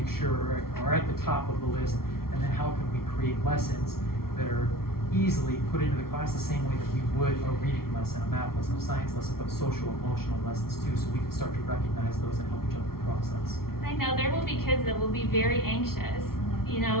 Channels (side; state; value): right; late; 0.94 ms